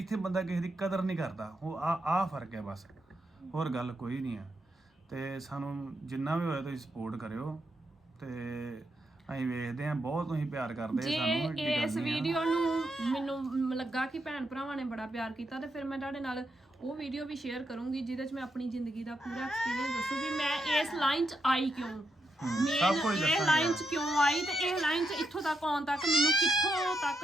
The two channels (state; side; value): normal; both; correlation 0.82